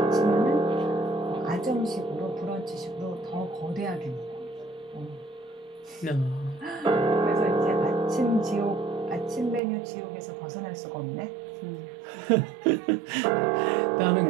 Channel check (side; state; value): left; drops out; at 9.6 s